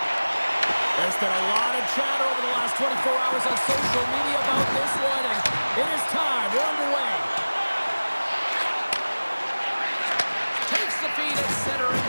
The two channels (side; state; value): both; inverted; correlation -1.00